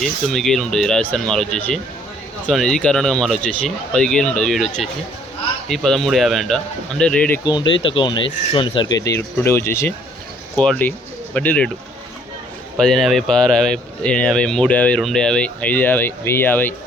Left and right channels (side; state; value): both; normal; correlation 0.62